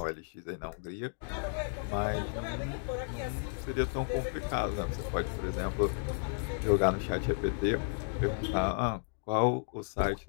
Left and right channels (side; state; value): right; silent; digital silence